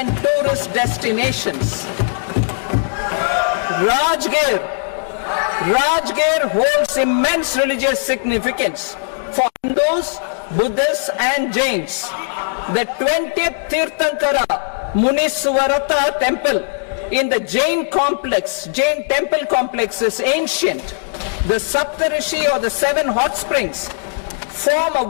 tourist destinations. Rajgir holds immense religious significance for Hindus, Buddhists and Jains. The 20th Tirthankara Muniswarata Temple in the Jain temple complex is ancient. The Saptarishi or the 7 hot springs form a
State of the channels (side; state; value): right; silent; digital silence